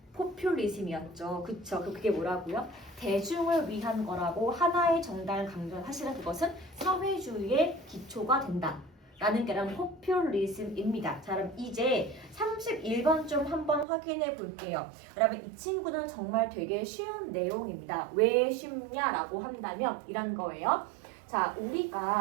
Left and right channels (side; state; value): left; drops out; at 13.9 s